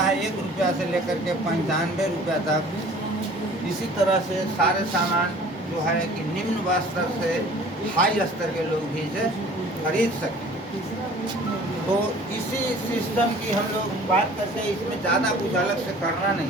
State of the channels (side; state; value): both; normal; correlation 0.48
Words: 1 रुपया से लेकर के 95 रुपया तक। इसी तरह से सारे सामान जो है कि निम्न स्तर से हाई स्तर के लोग भी इसे खरीद सकें। तो इसी सिस्टम की हम लोग बात करते हैं, इसमें ज़्यादा कुछ अलग से करना